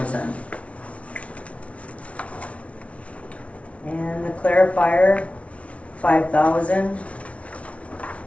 And the clarifier, 5,000.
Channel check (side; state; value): right; late; 0.063 ms